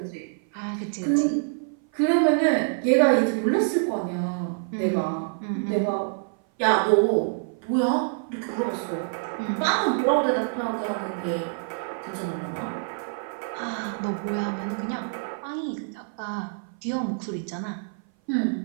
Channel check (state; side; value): silent; left; 57 dB below the other